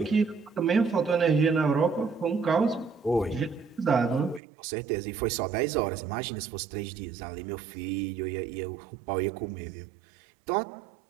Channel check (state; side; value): drops out; left; at 4.4 s